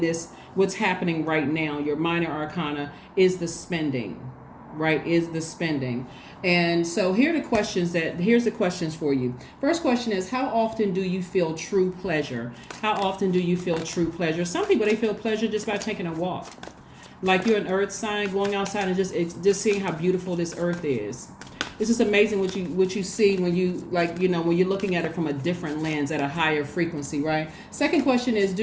what's happening right now, your minor arcana, is the spending, right? Is the spending. And so here's the questions for you. First question is, how often do you feel true pleasure? How often do you feel true pleasure? Some people, they feel pleasure just by taking a walk. Like you're an earth sign, going outside and just seeing how beautiful this earth is. It's just amazing what you see when you when you're looking at it from a different lens at a higher frequency, right? Second question is,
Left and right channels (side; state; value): both; identical; correlation 1.00